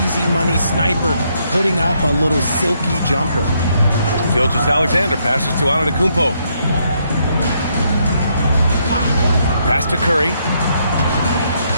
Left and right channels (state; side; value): inverted; both; correlation -0.74